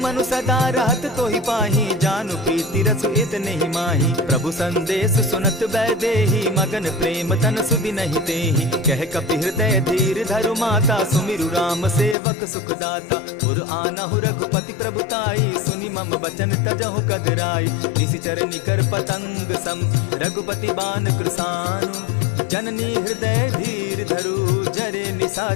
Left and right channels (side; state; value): right; drops out; at 12.2 s